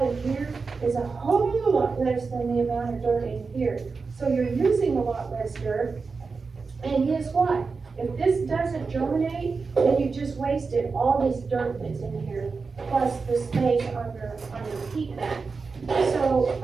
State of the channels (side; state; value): left; quieter; 4.6 dB